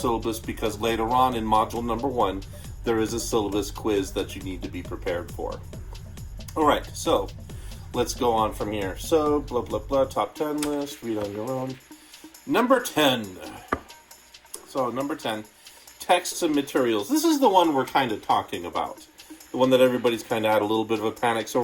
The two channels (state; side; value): identical; both; correlation 1.00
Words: because later on in module number 1, there is a syllabus quiz that you need to be prepared for. All right, so let's go on from here. So, blah, blah, blah, top 10 list, read on your own. Number 10. So, number 10, texts and materials. This is the one we're kind of talking about. The one that everybody's kind of had a little bit of a panic. So,